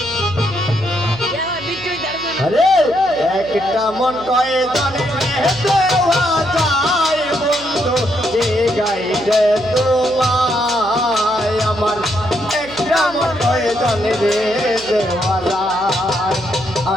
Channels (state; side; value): noise; right; hum, 17 dB below the sound